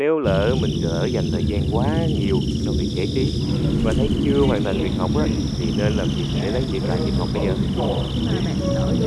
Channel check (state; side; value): identical; both; correlation 1.00